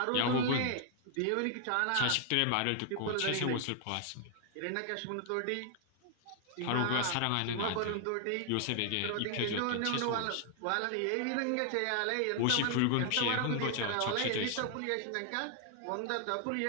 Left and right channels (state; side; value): different; both; correlation 0.00